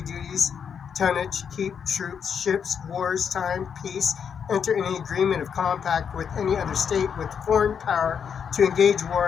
tonnage, keep troops, ships, wars, time, peace, enter any agreement of compact with any other state with foreign power to engage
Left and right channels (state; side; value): quieter; right; 7.2 dB